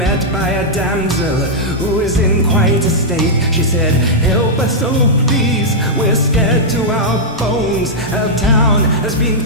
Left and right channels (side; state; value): both; normal; correlation -0.08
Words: by a damsel who was in quite a state. She said, "Help us, oh please, we're scared to our bones. Our town has been